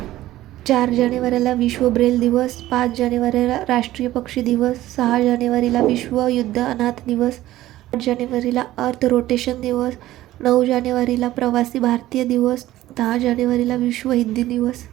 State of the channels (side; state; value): left; quieter; 15.3 dB